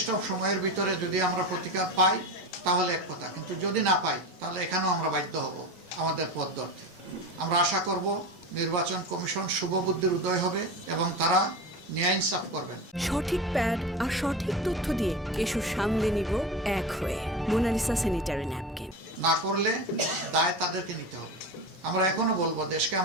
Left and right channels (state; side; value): normal; both; correlation 0.25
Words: সময়ের ভিতরে যদি আমরা প্রতিকার পাই তাহলে এক কথা, কিন্তু যদি না পাই তাহলে এখানেও আমরা বাধ্য হব আমাদের পথ ধরতে। আমরা আশা করব নির্বাচন কমিশন শুভবুদ্ধির উদয় হবে এবং তারা ন্যায় ইনসাফ করবেন। সঠিক প্যাড আর সঠিক তথ্য দিয়ে কেশু সামলে নিব এক হয়ে। Monalisa sanitary napkin. না করলে দায় তাদেরকে নিতে হবে। আমরা এখনো বলবো, দেশকে